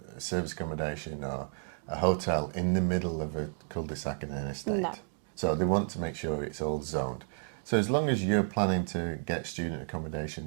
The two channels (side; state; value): left; silent; digital silence